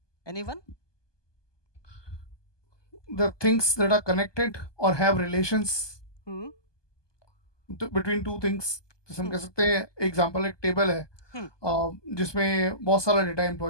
Anyone? The things that are connected or have relations between two things. जैसे हम कह सकते हैं एग्जांपल एक टेबल है जिसमें बहुत सारा डेटा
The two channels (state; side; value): late; right; 1.2 ms